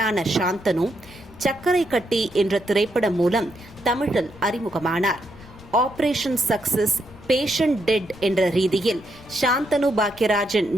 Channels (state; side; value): noise; left; rumble, 22 dB below the sound